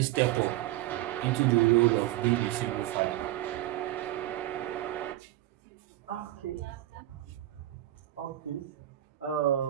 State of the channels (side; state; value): left; quieter; 15.3 dB